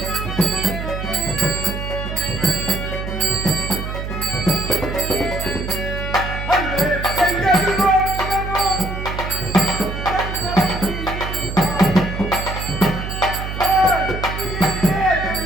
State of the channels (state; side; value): noise; right; hum, 5 dB below the sound